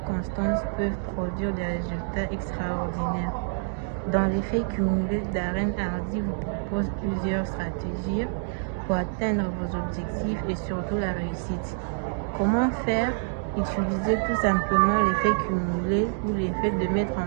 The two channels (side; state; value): left; silent; digital silence